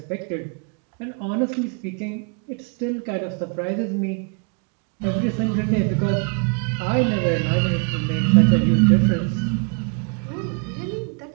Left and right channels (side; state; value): left; quieter; 38.5 dB